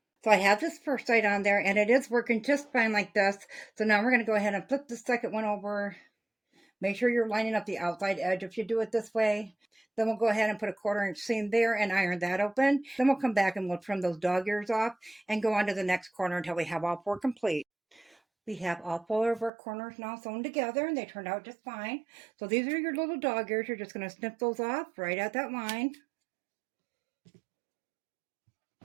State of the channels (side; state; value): left; drops out; at 19.5 s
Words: So I have this first side on there, and it is working just fine like this. So now we're going to go ahead and flip the second one over. Make sure you're lining up the outside edge if you do it this way. Then we'll go ahead and put a 1/4 inch seam there and iron that open. Then we'll come back and we'll trim those dog ears off and go on to the next corner until we have all 4 complete. We have all 4 of our corners now sewn together, and they turned out just fine. So these are your little dog ears. You're just going to snip those off right at that line.